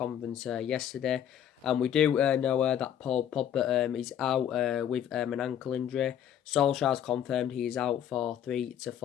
yesterday. And we do know that Paul Pogba is out with an ankle injury. Solskjaer's confirmed he is out for 3 to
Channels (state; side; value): quieter; right; 9.8 dB